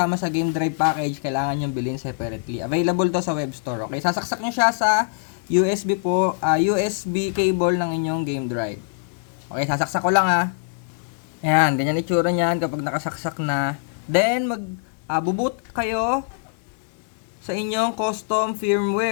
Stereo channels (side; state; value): right; silent; digital silence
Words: sa game drive package, kailangan nyo bilhin separately. Available to sa web store. Okay, sasaksak nyo siya sa USB cable ng inyong game drive. Okay, sasaksak ko lang Ayan, ganyan itsura niyan kapag nakasaksak na. Then mag-boot kayo sa inyong custom